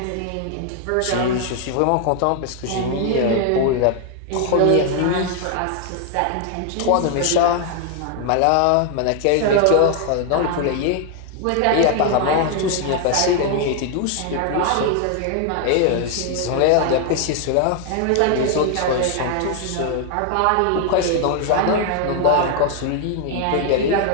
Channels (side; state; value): both; different; correlation 0.00